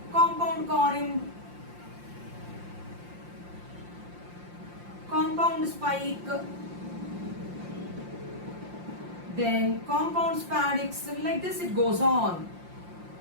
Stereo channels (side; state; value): left; late; 5.7 ms